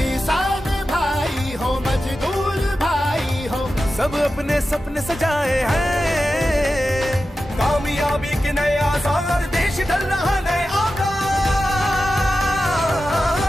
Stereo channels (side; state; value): both; normal; correlation 0.92